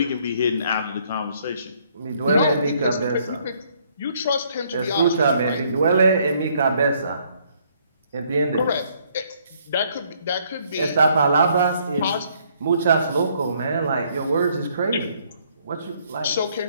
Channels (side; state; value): both; inverted; correlation -0.67